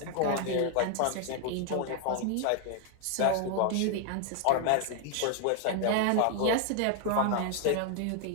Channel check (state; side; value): different; both; correlation 0.00